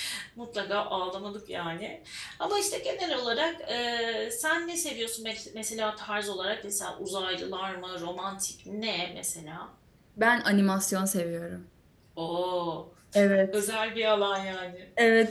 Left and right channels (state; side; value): identical; both; correlation 1.00